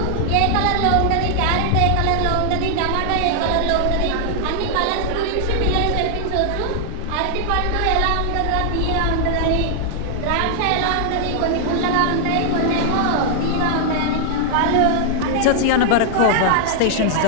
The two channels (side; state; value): both; different; correlation -0.01